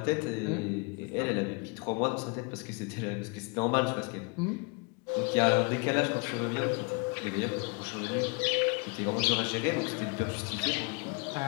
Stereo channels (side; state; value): right; quieter; 32.1 dB